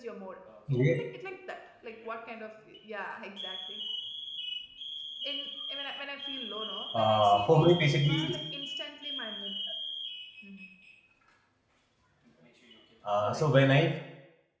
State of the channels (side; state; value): both; identical; correlation 1.00